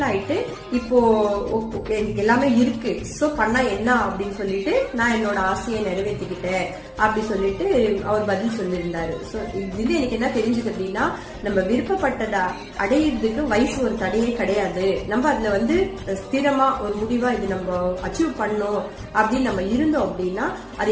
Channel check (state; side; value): identical; both; correlation 1.00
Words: ஆயிட்டு இப்போ எனக்கு எல்லாமே இருக்கு, சோ பண்ணா என்ன அப்படின்னு சொல்லிட்டு நான் என்னோட ஆசையை நிறைவேற்றிக்கிட்டேன் அப்படி சொல்லிட்டு அவர் பதில் சொல்லியிருந்தாரு. சோ இது எனக்கு என்ன தெரிஞ்சது அப்படின்னா, நம்ம விருப்பப்பட்டதை அடையிறதுக்கு வயசு ஒரு தடையே கிடையாது. நம்ம அதுல ஸ்திரமா ஒரு முடிவா இது நம்ம அச்சீவ் பண்ணோம் அப்படின்னு நம்ம இருந்தோம் அப்படின்னா அது